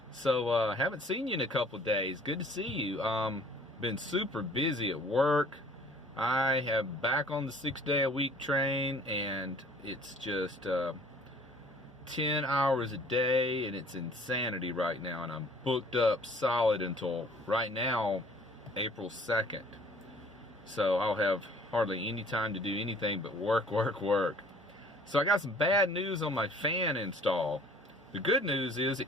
So, haven't seen you in a couple days. Good to see you. Been super busy at work. I have back on the 6-day-a-week train, and it's just 10 hours a day, and it's insanity right now. And I'm booked up solid until right now, April 2nd. So I'll have hardly any time to do anything but work, work, work. So I got some bad news on my fan install. The good news is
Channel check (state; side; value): normal; both; correlation 0.53